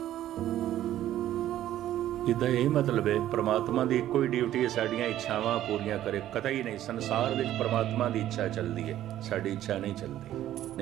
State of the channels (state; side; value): quieter; left; 12.7 dB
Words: इदा यही मतलब है परमात्मा की कोई ड्यूटी है साड़ियाँ इच्छावां पूरियां करे, कतई नहीं। संसार में परमात्मा की इच्छा चलती है, साड़ी इच्छा नहीं चलती,